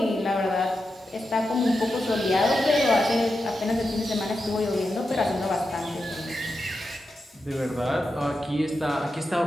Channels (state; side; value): normal; both; correlation 0.89